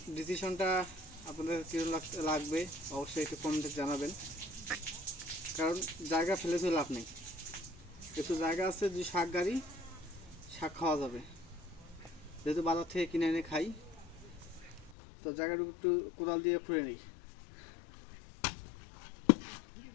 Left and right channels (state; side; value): drops out; right; at 15.0 s